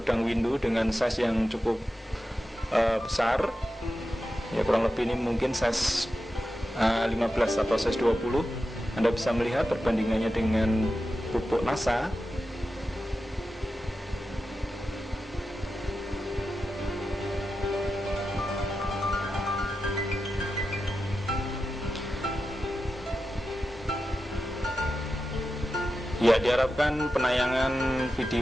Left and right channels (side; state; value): both; normal; correlation 0.91